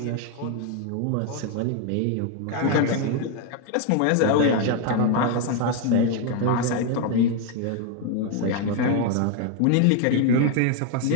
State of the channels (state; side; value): different; both; correlation 0.01